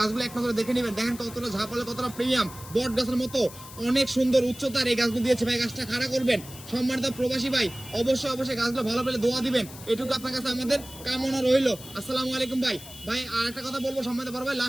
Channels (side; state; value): left; noise; hiss, 16 dB below the sound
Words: এক নজরে দেখে নেবেন। দেখেন কতটা ঝাপালে, কতটা প্রিমিয়াম, বট গাছের মতো অনেক সুন্দর উচ্চতার এই গাছগুলো দিয়েছে। ভাই, গাছটা খাড়া করবেন। সম্মানিত প্রবাসী ভাই, অবশ্যই অবশ্যই গাছগুলো ভালো পেলে দোয়া দিবেন, এটুকু আপনার কাছে আমাদের কামনা রইল। আসসালামু আলাইকুম ভাই। ভাই, আর একটা কথা বলবো, সম্মানিত বড় ভাই,